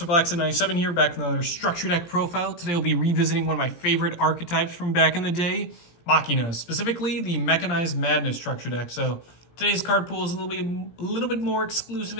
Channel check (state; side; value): late; right; 17 ms